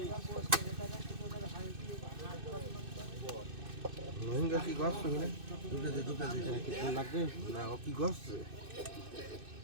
রোহিঙ্গা কি গছ না দুটো লাগবে না ও কি গছ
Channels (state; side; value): late; left; 2.6 ms